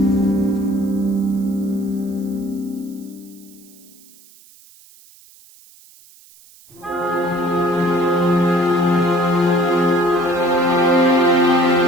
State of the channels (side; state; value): right; noise; hiss, 25 dB below the sound